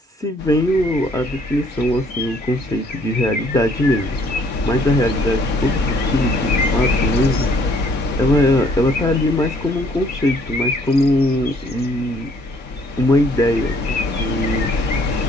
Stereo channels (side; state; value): both; normal; correlation 0.62